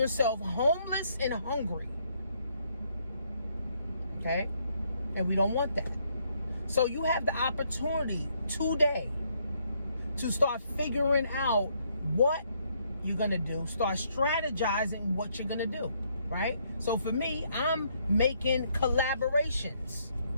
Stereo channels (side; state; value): both; inverted; correlation -0.71